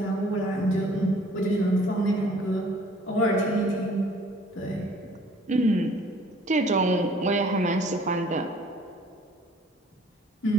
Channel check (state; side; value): normal; both; correlation 0.55